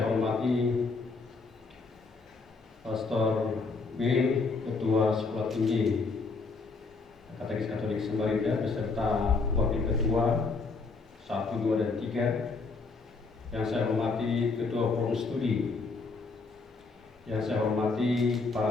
hormati Pastor Bill, Ketua Sekolah Tinggi Katekis Katolik Samarinda beserta Wakil Ketua 1, 2, dan 3. Yang saya hormati Ketua Forum Studi. Yang saya hormati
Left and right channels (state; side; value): quieter; right; 4.1 dB